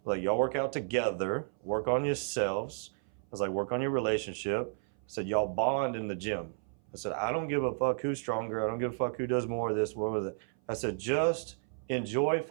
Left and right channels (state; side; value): silent; left; 56 dB below the other